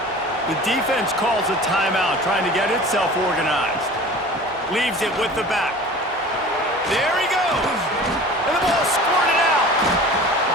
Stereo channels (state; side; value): normal; both; correlation 0.41